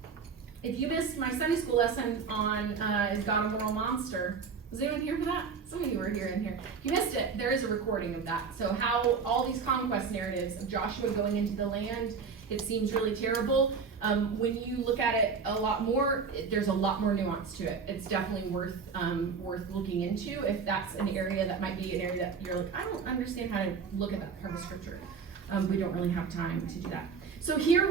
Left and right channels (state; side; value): quieter; left; 5.6 dB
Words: If you missed my Sunday school lesson on Is God a Moral Monster, was anyone here for that? Some of you were here in here. If you missed it, there is a recording of that. So how all these conquest narratives of Joshua going into the land, it seems really terrible. When you look at it a lot more, there's a lot more nuance to it. It's definitely worth looking into if that's an area that might be an area that you're like, I don't understand how to look at that part of scripture. We don't really have time to do that. So here